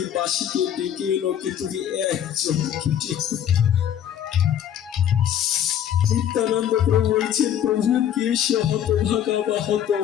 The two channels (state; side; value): quieter; right; 9.9 dB